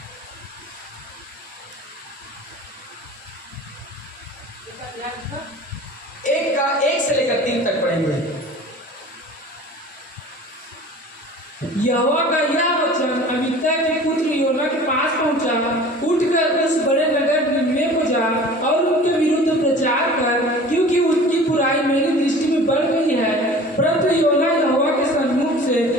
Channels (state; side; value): normal; both; correlation 0.43